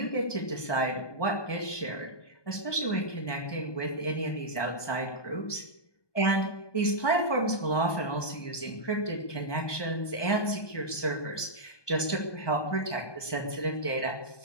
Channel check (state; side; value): late; right; 1.2 ms